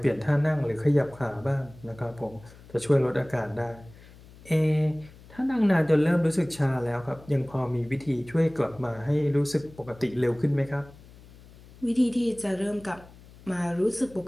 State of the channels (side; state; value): left; noise; hum, 22 dB below the sound